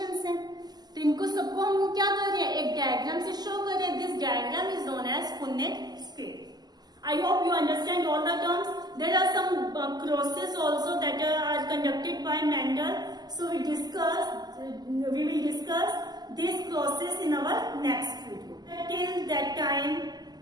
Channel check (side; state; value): left; late; 0.20 ms